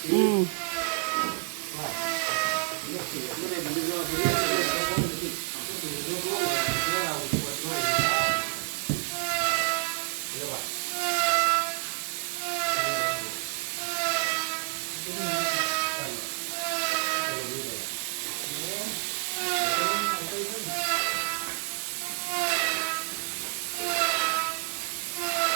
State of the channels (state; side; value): silent; left; 59 dB below the other